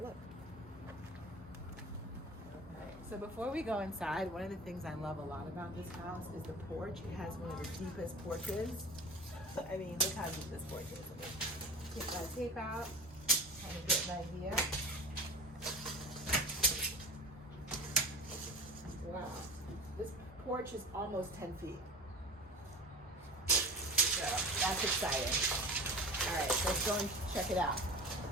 look. So before we go inside, one of the things I love a lot about this house is the porch. It has one of the deepest porches. I mean, look how deep this porch is. Let me take my tape out, kind of get an idea. Wow, this porch is almost 10 feet. So that's exciting. All right, let's go and check it out.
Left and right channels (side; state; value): both; normal; correlation 0.34